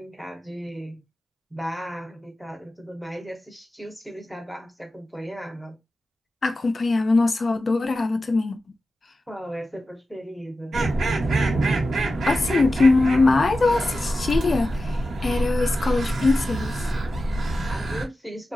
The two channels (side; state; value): both; normal; correlation 0.93